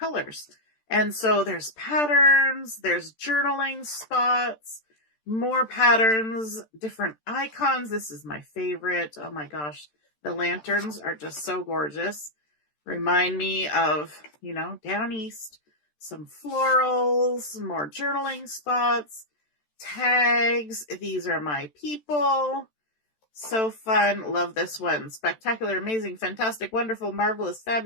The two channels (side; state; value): right; late; 13 ms